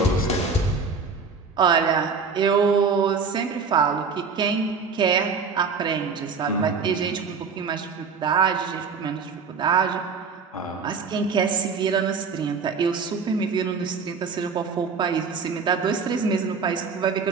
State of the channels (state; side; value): quieter; left; 5.2 dB